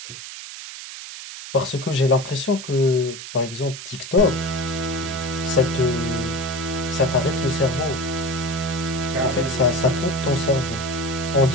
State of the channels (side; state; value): right; noise; hiss, 11 dB below the sound